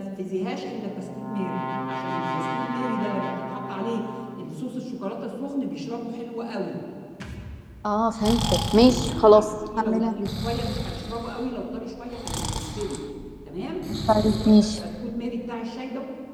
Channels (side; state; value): both; identical; correlation 1.00